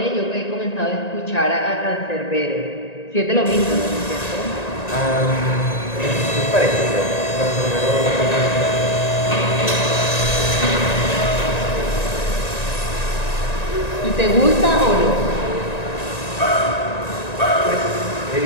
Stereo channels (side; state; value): right; late; 1.9 ms